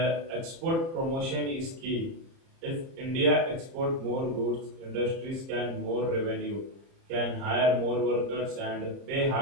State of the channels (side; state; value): left; late; 30 ms